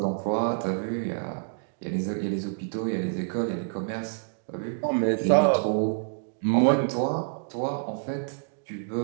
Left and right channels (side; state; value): left; silent; digital silence